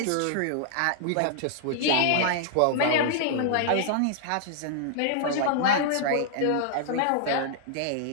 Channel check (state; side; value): different; both; correlation -0.01